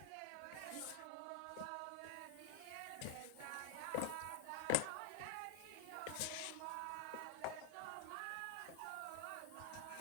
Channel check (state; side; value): different; both; correlation 0.00